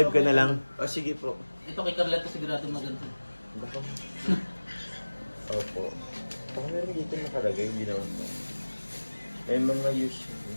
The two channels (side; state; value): both; inverted; correlation -1.00